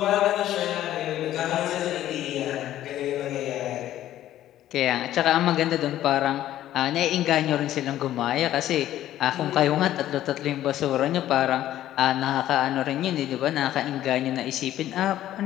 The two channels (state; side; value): quieter; right; 12.9 dB